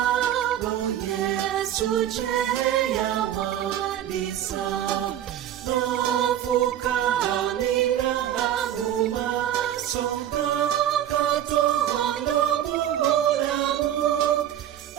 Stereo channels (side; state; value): left; quieter; 11.3 dB